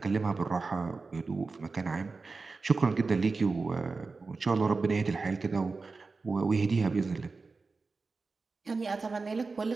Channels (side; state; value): left; quieter; 4.1 dB